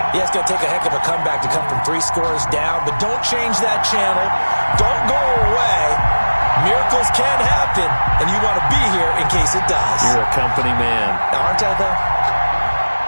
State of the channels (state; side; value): inverted; both; correlation -1.00